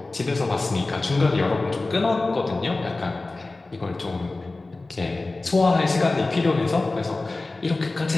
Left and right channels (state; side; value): quieter; right; 3.2 dB